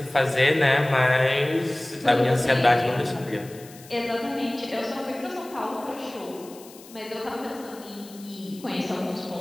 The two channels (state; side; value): noise; left; hiss, 20 dB below the sound